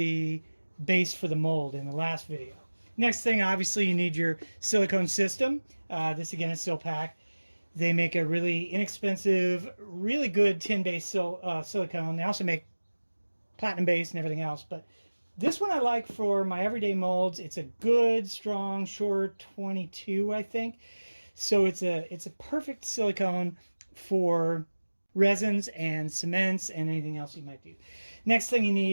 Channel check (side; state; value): both; inverted; correlation -1.00